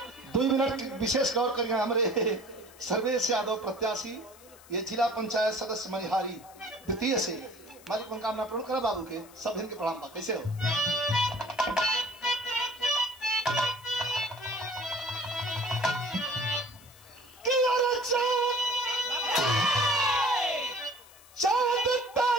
2 मिनट विशेष गौर करिए हमारे सर्वेश यादव प्रत्याशी ये जिला पंचायत सदस्य मनिहारी द्वितीय से मालिक मनोकामना पूर्ण करा बाबू के सब इनके प्रणाम बा कैसे हो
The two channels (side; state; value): left; noise; hiss, 23 dB below the sound